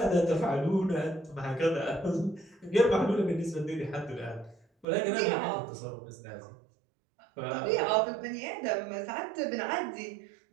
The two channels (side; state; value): left; drops out; at 4.9 s